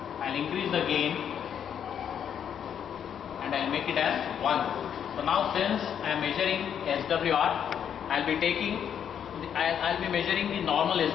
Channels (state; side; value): quieter; right; 8.6 dB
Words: I will increase the gain and I will make it as 1. So now since I am measuring SWR, I will be measuring the normal